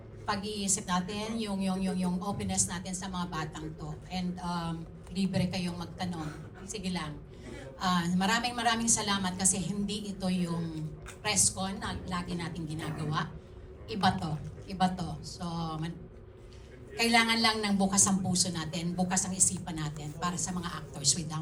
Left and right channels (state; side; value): identical; both; correlation 1.00